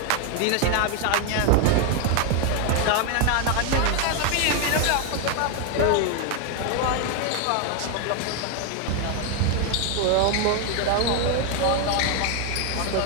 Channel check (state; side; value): different; both; correlation 0.01